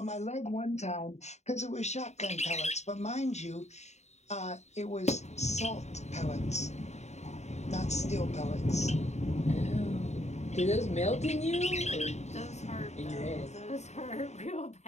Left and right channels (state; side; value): late; right; 0.32 ms